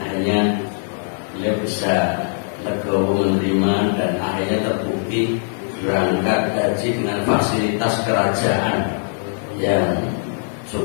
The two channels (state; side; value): silent; right; digital silence